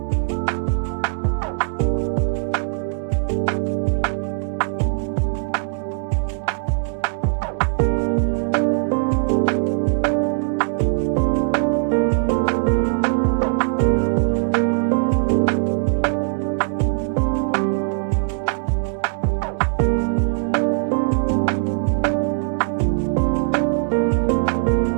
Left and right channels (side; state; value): left; silent; digital silence